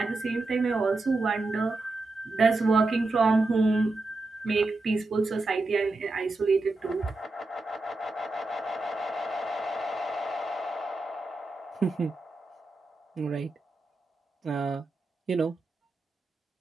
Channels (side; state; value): left; quieter; 3.1 dB